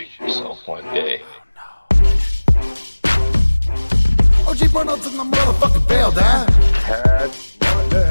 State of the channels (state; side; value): inverted; both; correlation -1.00